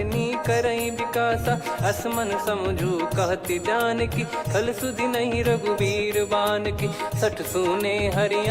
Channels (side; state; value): both; identical; correlation 1.00